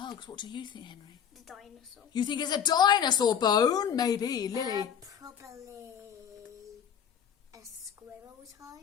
What do you think, Henry? The dinosaur. You think it's a dinosaur bone? Maybe, Lily. Probably a squirrel's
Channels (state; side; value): quieter; right; 8.3 dB